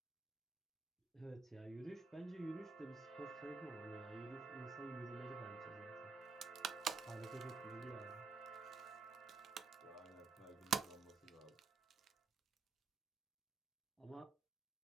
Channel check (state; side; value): quieter; left; 4.5 dB